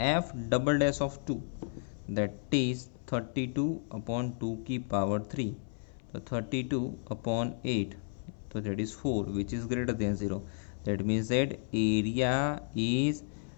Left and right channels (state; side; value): silent; right; 56 dB below the other